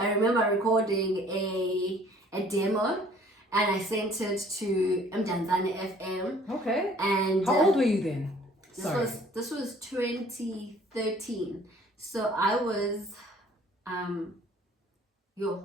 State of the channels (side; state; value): both; normal; correlation 0.55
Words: remember recording a demo and I sent it to Qondani FM. Okay. And how old were you then? This was 2013. So I was, how